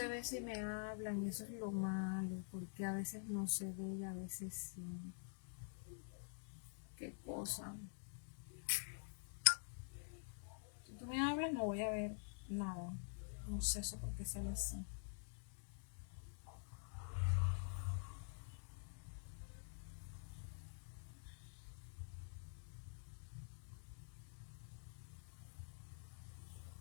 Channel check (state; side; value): silent; right; digital silence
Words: ve si me hablan y eso es lo malo, porque a veces no se ve y a veces sí. ¿Qué cosa? Si tú me hablas no voy a ver nada. No sé eso por qué sale así.